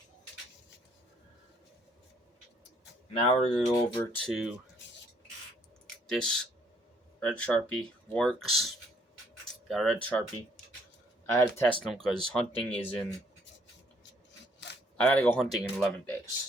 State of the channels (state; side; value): normal; both; correlation 0.66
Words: Now we're gonna go over to this red Sharpie. Works. Got a red Sharpie. I had to test them because hunting is in. I gotta go hunting in 11 days.